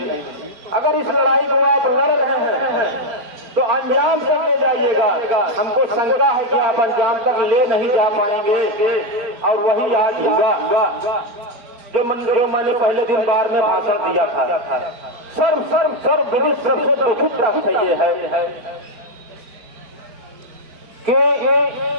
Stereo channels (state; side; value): late; left; 4.4 ms